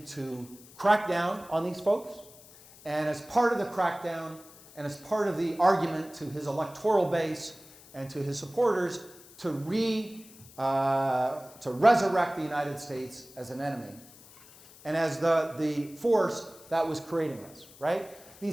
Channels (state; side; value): noise; left; hiss, 22 dB below the sound